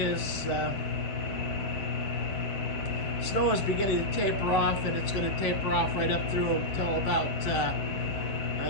snow is beginning to taper off, and it's going to taper off right up through until about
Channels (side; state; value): right; late; 7.9 ms